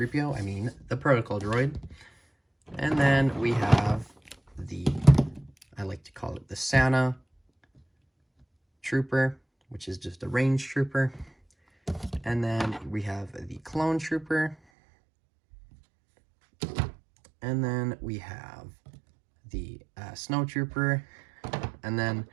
I mean the Protocol Droid. And then we have the, I like to call it the Santa Trooper, which is just a range trooper. And then we have the Clone Trooper. And then we have the Snow Trooper. And then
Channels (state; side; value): drops out; left; at 14.6 s